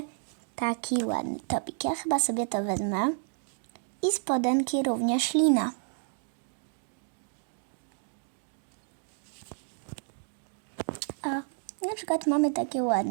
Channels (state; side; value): silent; left; 57 dB below the other